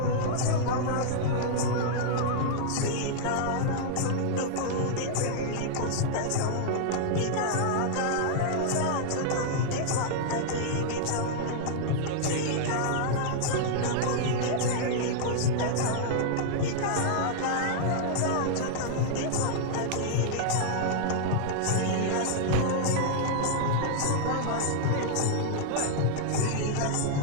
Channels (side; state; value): both; different; correlation -0.01